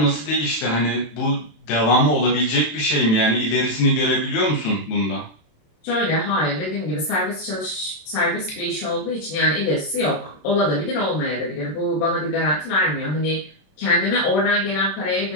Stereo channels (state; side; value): late; right; 27 ms